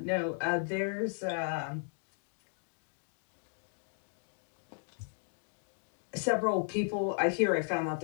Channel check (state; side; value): silent; right; 54 dB below the other